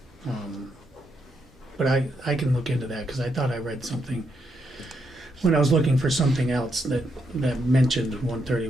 But I can look into that, because I thought I read something, when I was looking for something else that mentioned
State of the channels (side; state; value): both; normal; correlation 0.79